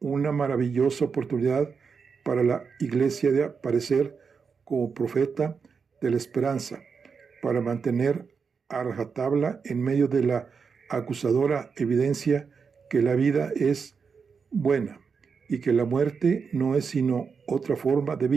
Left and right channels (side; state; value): left; quieter; 5.7 dB